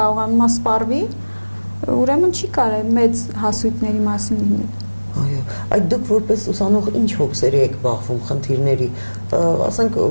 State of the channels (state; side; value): inverted; both; correlation -1.00